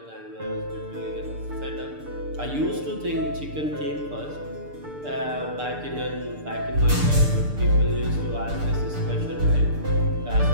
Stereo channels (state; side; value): late; left; 6.8 ms